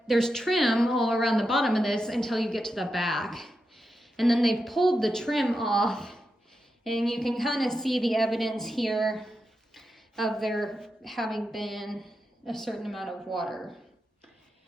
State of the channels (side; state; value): both; normal; correlation 0.88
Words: there's trim all around the bottom of this until you get to the back. And then they've pulled the trim off, and you can kind of see the evidence here of there having been a certain amount of water.